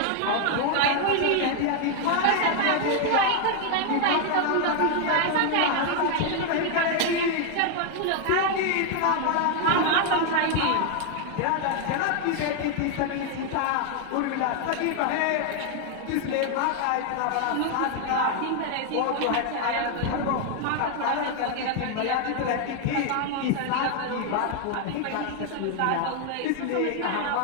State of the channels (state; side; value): different; both; correlation 0.01